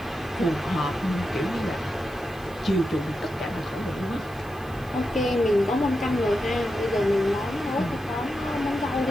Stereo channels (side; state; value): right; noise; hiss, 24 dB below the sound